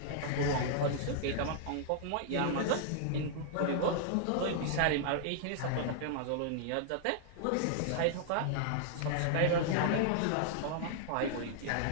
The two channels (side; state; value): both; different; correlation -0.01